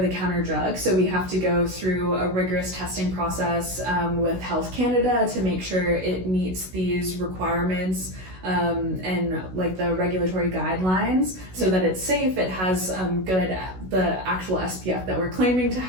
drugs, so we have to go through a rigorous testing process with Health Canada to make sure it meets these requirements and like the regulatory guidelines, so that it's safe, it has the actual SPF that we're claiming to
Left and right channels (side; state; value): left; late; 16 ms